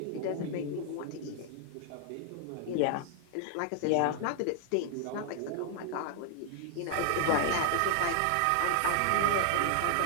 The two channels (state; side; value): different; both; correlation 0.00